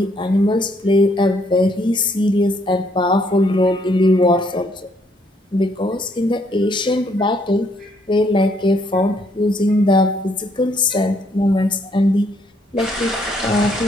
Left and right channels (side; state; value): both; normal; correlation 0.69